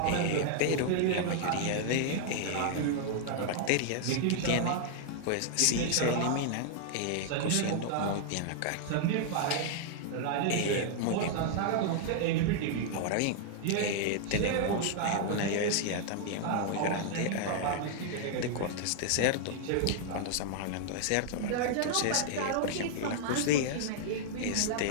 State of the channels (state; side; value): different; both; correlation 0.00